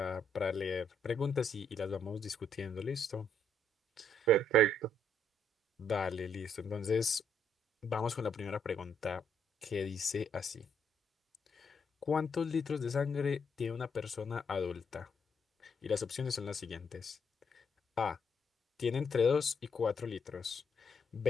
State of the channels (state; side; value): normal; both; correlation 0.72